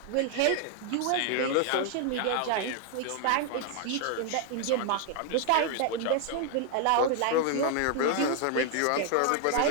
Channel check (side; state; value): both; different; correlation 0.01